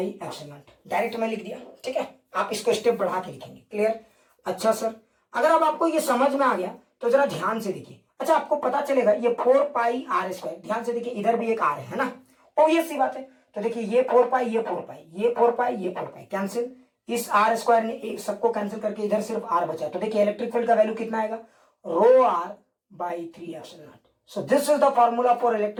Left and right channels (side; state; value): both; identical; correlation 1.00